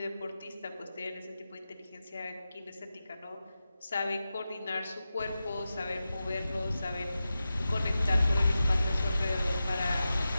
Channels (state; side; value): inverted; both; correlation -0.93